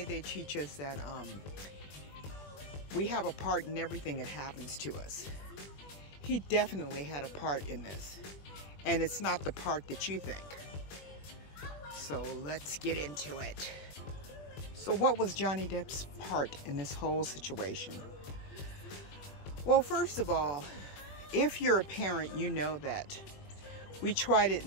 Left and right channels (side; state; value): right; late; 20 ms